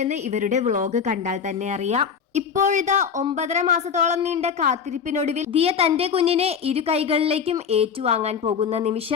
എന്ന് ഇവരുടെ വ്ളോഗ് കണ്ടാൽ തന്നെ അറിയാം. ഇപ്പോഴിതാ 9.5 മാസത്തോളം നീണ്ട കാത്തിരിപ്പിനൊടുവിൽ ദിയ തന്റെ കുഞ്ഞിനെ ഇരു കൈകളിലേക്കും ഏറ്റുവാങ്ങാൻ പോകുന്ന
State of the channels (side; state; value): right; quieter; 6.8 dB